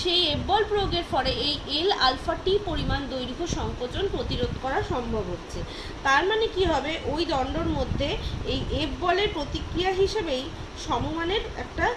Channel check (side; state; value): both; identical; correlation 1.00